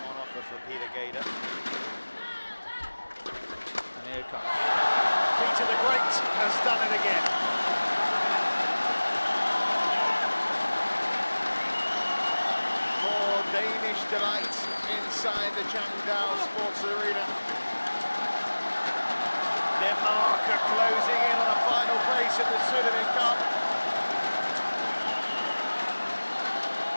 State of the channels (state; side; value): inverted; both; correlation -1.00